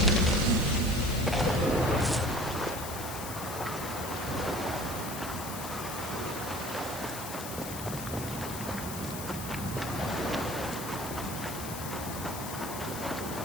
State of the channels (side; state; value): left; noise; hiss, 8 dB below the sound